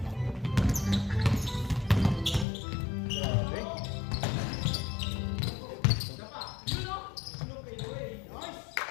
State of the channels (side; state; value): right; drops out; at 2.5 s